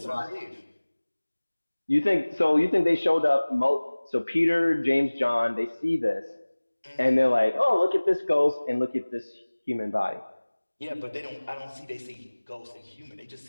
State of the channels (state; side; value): inverted; both; correlation -1.00